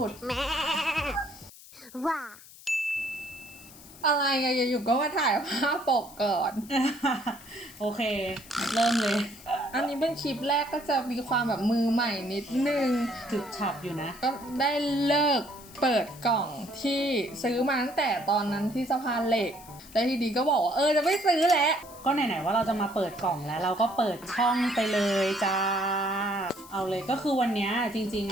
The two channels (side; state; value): left; noise; hiss, 20 dB below the sound